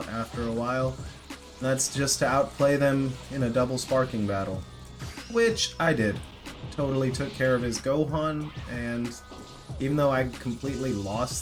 after a while. That's just to outplay them in a double Sparking battle. Which I did. Totally took care of his Gohan, and even though I completely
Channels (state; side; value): identical; both; correlation 1.00